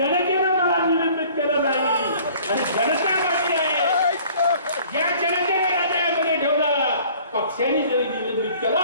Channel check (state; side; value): inverted; both; correlation -0.52